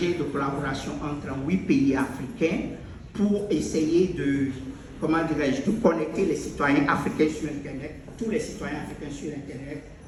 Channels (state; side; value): identical; both; correlation 1.00